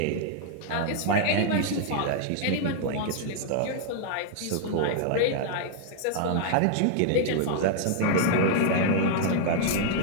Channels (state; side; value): different; both; correlation -0.01